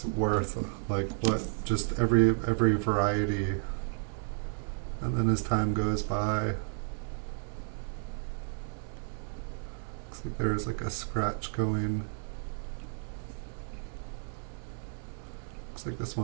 worth, like what just every variety. And then as time goes by, looks like there's like a scratch going. Looks like this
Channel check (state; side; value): silent; left; 56 dB below the other